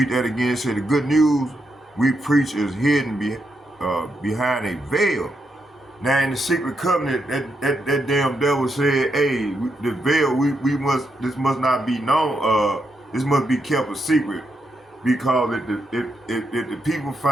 that again. It said the good news we preach is hidden behind a veil. Now in the secret covenant, that damn devil said, "Hey, the veil, this must not be known. This must be kept a secret, because if the people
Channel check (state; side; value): normal; both; correlation 0.82